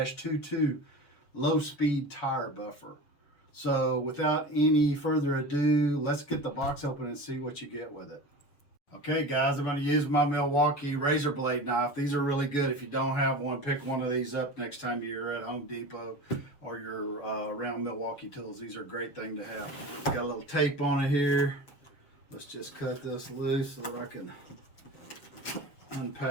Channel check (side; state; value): right; late; 6.9 ms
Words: low-speed tire buffer. So without any further ado, let's get the box open and see what you get with it. Okay guys, I'm going to use my Milwaukee Razor blade knife. These are really good. If you don't have one, pick one of these up next time you're at Home Depot or you're around Milwaukee Tools. These are a great thing to have. Got a little tape on it here. Let's just cut this loose so that I can